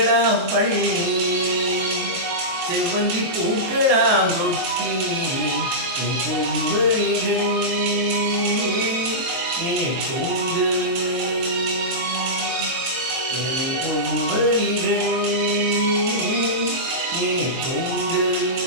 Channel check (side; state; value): left; late; 23 ms